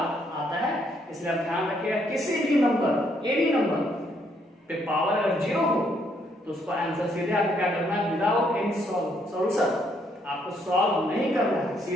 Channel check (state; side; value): normal; both; correlation 0.71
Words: आता है, इसलिए आप ध्यान रखिएगा किसी भी नंबर, ये भी नंबर पे पावर अगर 0 हो तो उसका आंसर सीधे आपको क्या करना है, विदाउट एनी सॉल्यूशन, आपको सॉल्व नहीं करना है,